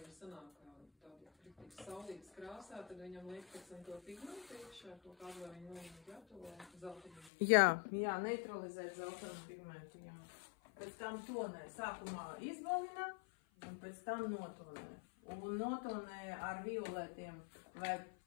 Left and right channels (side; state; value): right; drops out; at 7.3 s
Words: Sanāk tādu saulītas krāsā, tad viņam liek pēc tam to pigmentu iekšā, to kādu vai viņu gatavo zeltainu. Jā, neutralizēt zeltainu pigmentu, jā. Pēc tam tonē sākumā izbalina. Un pēc tam notonē. Un notonē ar violetiem vai